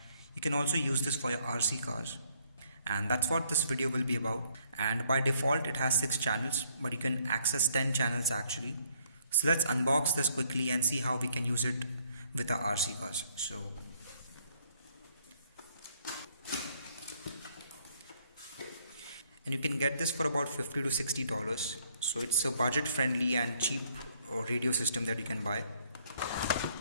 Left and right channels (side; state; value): both; inverted; correlation -0.66